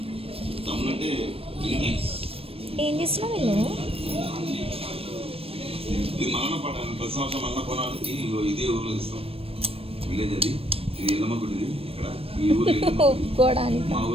ఏం చేస్తున్నావు నేను? ఒప్పుకోవడానికి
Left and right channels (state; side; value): late; left; 0.28 ms